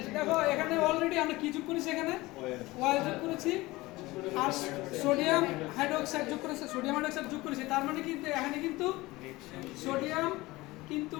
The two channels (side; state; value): right; quieter; 20.2 dB